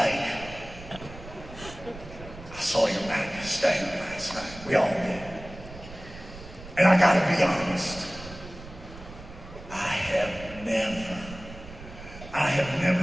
saw your Magnus thing last night. We all did. And I gotta be honest. I have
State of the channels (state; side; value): noise; right; rumble, 15 dB below the sound